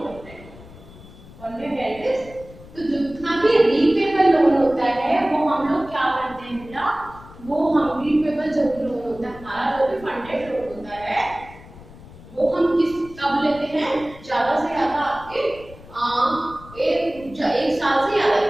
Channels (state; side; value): noise; left; rumble, 19 dB below the sound